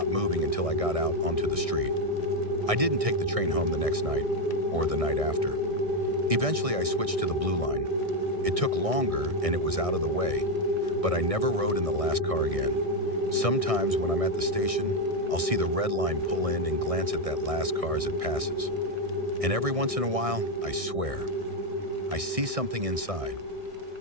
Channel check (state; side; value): late; left; 1.6 ms